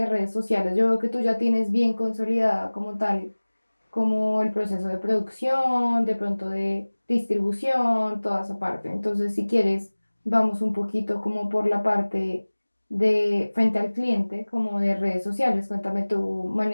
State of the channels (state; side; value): inverted; both; correlation -1.00